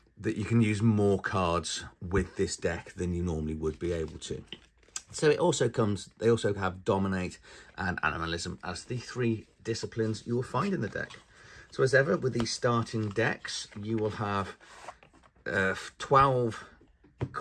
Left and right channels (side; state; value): both; identical; correlation 1.00